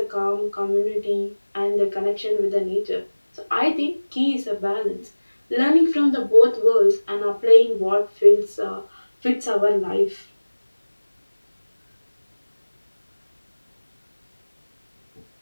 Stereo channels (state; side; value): inverted; both; correlation -1.00